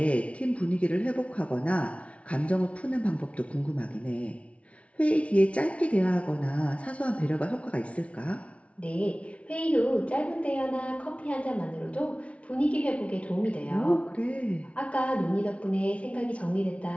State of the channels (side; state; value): right; late; 0.063 ms